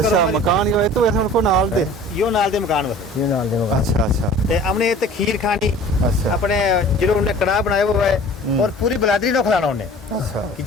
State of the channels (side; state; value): both; normal; correlation 0.45